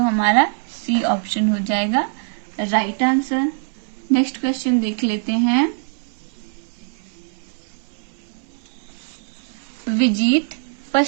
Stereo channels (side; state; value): left; silent; 64 dB below the other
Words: हमारा सी ऑप्शन हो जाएगा राइट आंसर। नेक्स्ट क्वेश्चन देख लेते हैं। विजीत